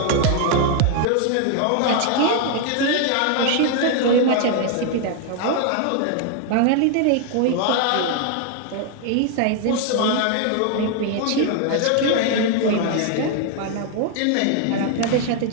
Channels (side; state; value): both; different; correlation 0.00